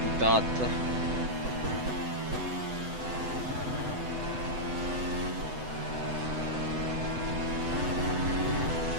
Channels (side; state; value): left; late; 7.9 ms